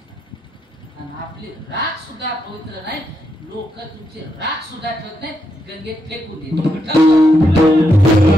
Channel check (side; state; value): both; normal; correlation 0.81